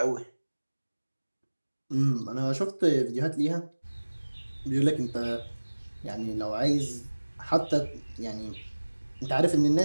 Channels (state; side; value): inverted; both; correlation -1.00